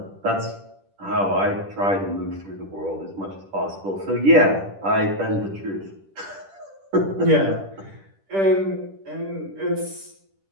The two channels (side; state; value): left; late; 10 ms